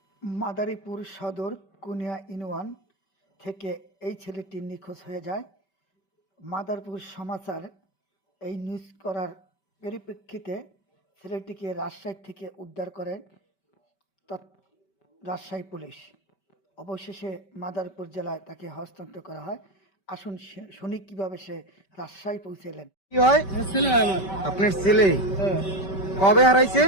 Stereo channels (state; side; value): late; right; 5.2 ms